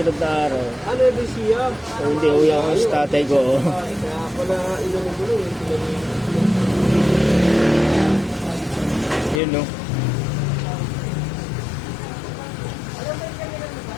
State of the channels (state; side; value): drops out; right; at 9.4 s